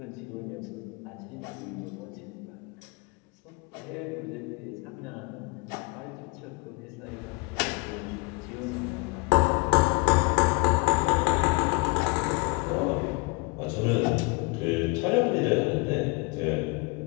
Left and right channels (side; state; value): right; quieter; 27.9 dB